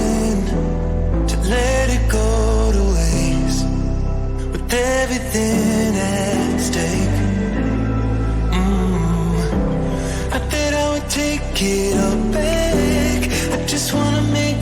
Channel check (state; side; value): identical; both; correlation 1.00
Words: to let it go to waste, with everything at stake. I bet I would take it all back. I just wanna make